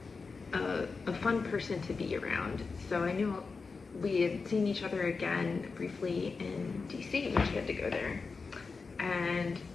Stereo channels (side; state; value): right; quieter; 4.5 dB